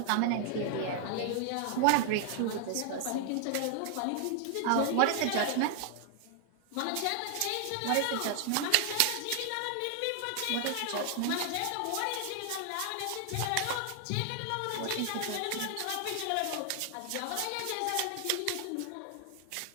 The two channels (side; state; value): both; different; correlation 0.00